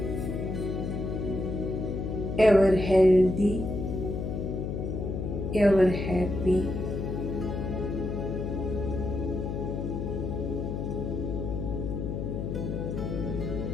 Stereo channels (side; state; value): left; noise; hum, 3 dB below the sound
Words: Ever healthy, ever happy.